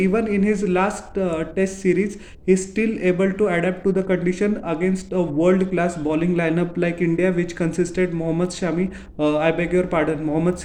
in his last test series, he's still able to adapt to the condition against a world-class bowling lineup like India, which consisted Mohammad Shami, I beg your pardon, Mohammad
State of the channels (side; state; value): both; identical; correlation 1.00